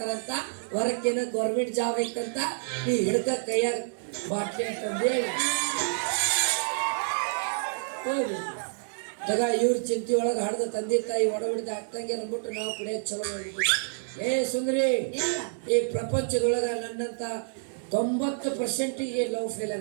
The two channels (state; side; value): silent; left; digital silence